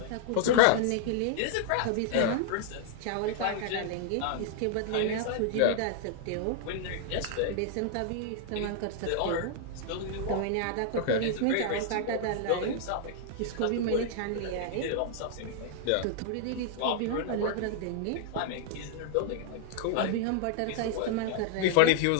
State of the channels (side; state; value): both; different; correlation -0.01